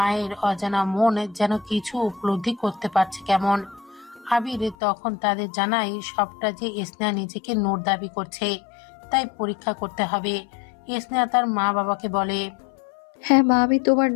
অজানা মন যেন কিছু উপলব্ধি করতে পারছে কেমন। আবির তখন তাদের জানায় সবটা যে স্নেহা নিজেকে নূর দাবি করছে, তাই পরীক্ষা করতে হবে। স্নেহা তার মা বাবাকে বলে, হ্যাঁ মা, আমি তোমার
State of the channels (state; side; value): drops out; right; at 4.8 s